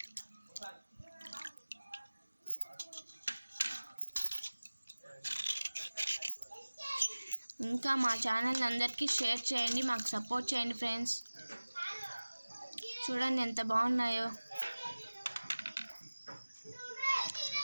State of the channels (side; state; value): both; inverted; correlation -1.00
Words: ఇంకా మా ఛానల్ అందరికీ షేర్ చేయండి. మాకు సపోర్ట్ చేయండి ఫ్రెండ్స్. చూడండి ఎంత బాగున్నాయో.